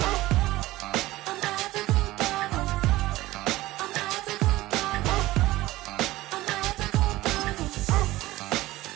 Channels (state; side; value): quieter; left; 17.6 dB